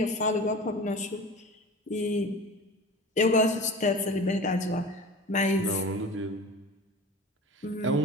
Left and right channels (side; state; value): both; normal; correlation 0.35